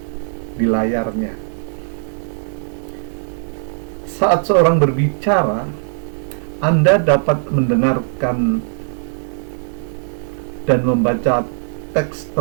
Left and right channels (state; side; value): silent; left; digital silence